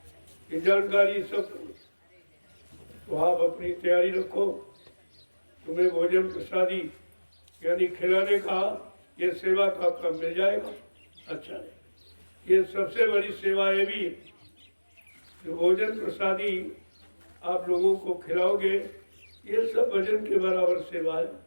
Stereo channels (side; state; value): both; inverted; correlation -1.00